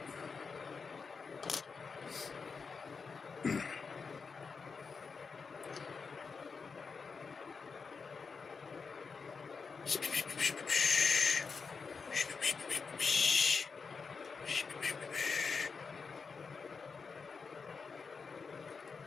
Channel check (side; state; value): right; quieter; 5.1 dB